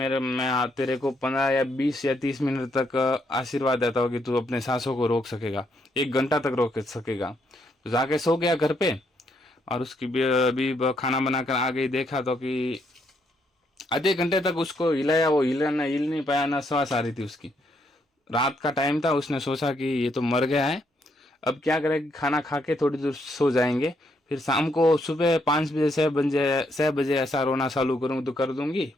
तेरे को 15 या 20 या 30 मिनट तक आशीर्वाद देता हूँ कि तू अपने सांसों को रोक सकेगा, 1 घंटा तक रोक सकेगा। तो जाके सो गया घर पे, और उसकी भी खाना बनाकर आ गई। देखा तो कि आधे घंटे तक उसको हिलाया, वो हिल नहीं पाया, ना सांस आ रही थी उसकी। रात का टाइम था, उसने सोचा कि ये तो मर गया है, अब क्या करें, खाना खा के थोड़ी देर सो जाएंगे, फिर शाम को सुबह 5 बजे 6 बजे ऐसा रोना चालू करूँ तो कर दूंगी,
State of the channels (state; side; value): normal; both; correlation 0.75